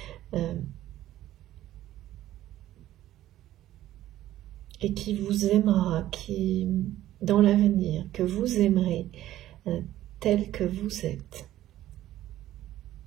et qui vous aimera, qui, dans l'avenir, que vous aimerez tel que vous êtes.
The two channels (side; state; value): left; quieter; 13.8 dB